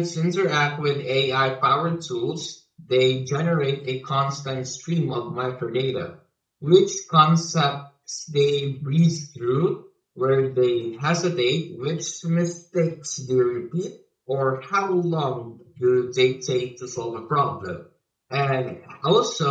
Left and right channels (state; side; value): identical; both; correlation 1.00